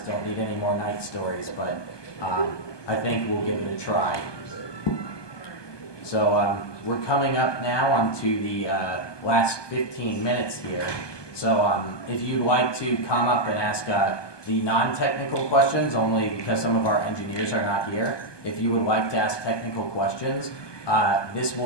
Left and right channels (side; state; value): right; late; 1.2 ms